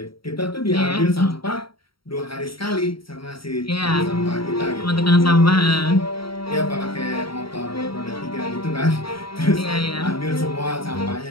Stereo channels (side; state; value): right; late; 0.74 ms